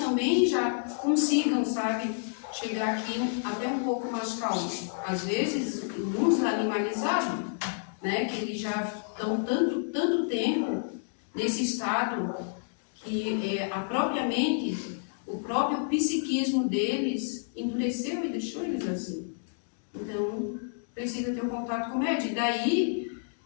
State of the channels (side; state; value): right; silent; digital silence